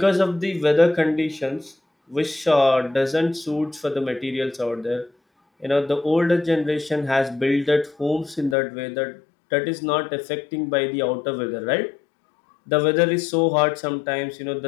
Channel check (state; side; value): drops out; right; at 8.6 s